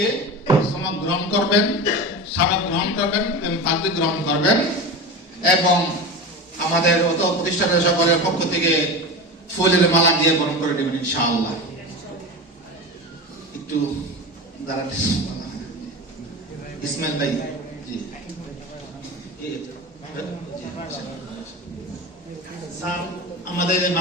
সনদ গ্রহণ করবেন, স্মারক গ্রহণ করবেন এবং পাগড়ি গ্রহণ করবেন, এবং আমাদের অত প্রতিষ্ঠানের সকলের পক্ষ থেকে ফুলের মালা দিয়ে বরণ করে দেবেন ইনশাআল্লাহ। একটু দাঁড়াতে ইসমাইল ভাই। জি, স্যার আমাদের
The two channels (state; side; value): normal; both; correlation 0.27